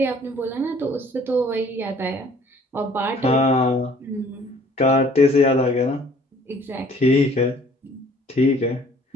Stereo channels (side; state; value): both; normal; correlation 0.56